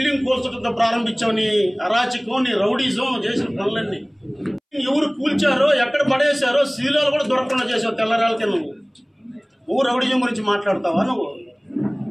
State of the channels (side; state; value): both; identical; correlation 1.00